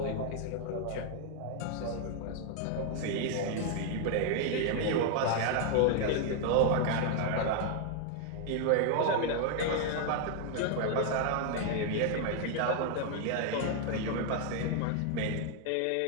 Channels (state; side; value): different; both; correlation 0.00